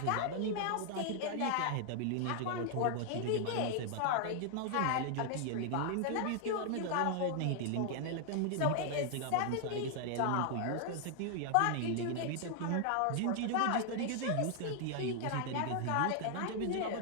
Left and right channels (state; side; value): different; both; correlation 0.00